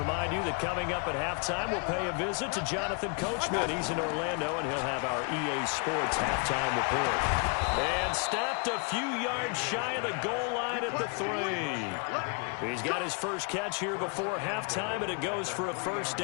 you that coming up at halftime, we'll pay a visit to Jonathan Coachman. He's in Orlando, and he'll have our EA Sports halftime report. And stopped a few yards shy of the goal line at the 3. He's got his first catch here before halftime, and it goes for a first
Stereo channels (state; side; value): quieter; right; 36.7 dB